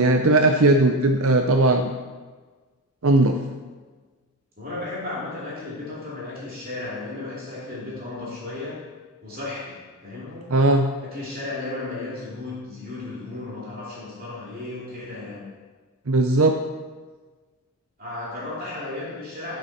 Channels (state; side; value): normal; both; correlation 0.19